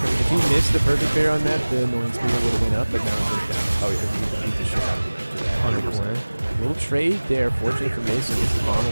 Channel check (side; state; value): both; inverted; correlation -1.00